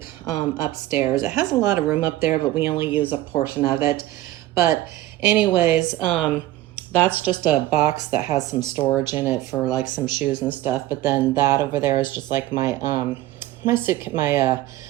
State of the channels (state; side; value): quieter; left; 15.7 dB